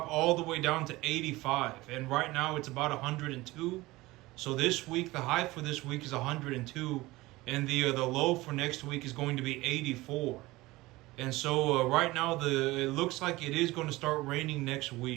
all the way down to 85. And right now it's about 102. So this week, the high for this week is 102. And the low for next week is going to be 84. And so right now, it looks like it is going to start raining next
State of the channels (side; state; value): left; quieter; 19.8 dB